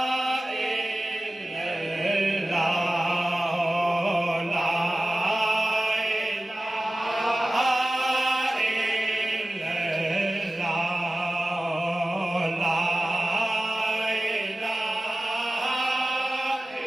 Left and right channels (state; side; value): normal; both; correlation 0.96